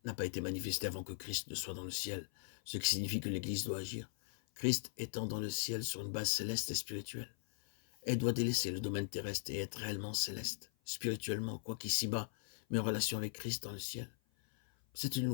n'a pas été manifestée avant que Christ ne soit dans le ciel, ce qui signifie que l'Église doit agir. Christ étant dans le ciel sur une base céleste et spirituelle, elle doit délaisser le domaine terrestre et être réellement céleste, spirituellement, quoi qu'ici-bas, mais en relation avec Christ dans le ciel. C'est une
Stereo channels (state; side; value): silent; right; 51 dB below the other